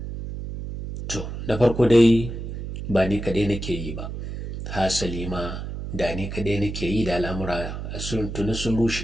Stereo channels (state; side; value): noise; right; hum, 7 dB below the sound